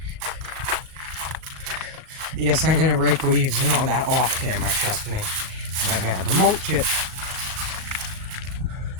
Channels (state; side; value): late; left; 37 ms